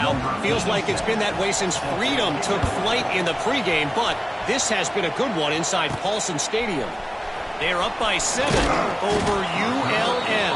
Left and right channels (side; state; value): both; identical; correlation 1.00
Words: Feels like it's been that way since Freedom took flight in the pregame, but this has been a good one inside Paulson Stadium. They're up by 7 over